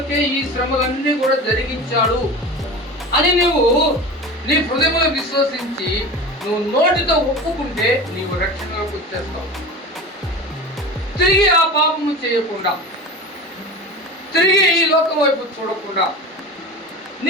ఈ శ్రమలన్నీ కూడా జరిగించాడు అని నువ్వు నీ హృదయంలో విశ్వసించి నువ్వు నోటితో ఒప్పుకుంటే నీవు రక్షణలోకి వచ్చేస్తావు. తిరిగి ఆ పాపము చేయకుండా, తిరిగి ఈ లోకం వైపు చూడకుండా,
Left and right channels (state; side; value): normal; both; correlation 0.32